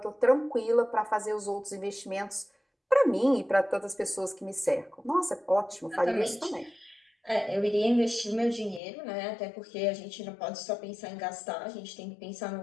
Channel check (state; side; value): drops out; right; at 8.8 s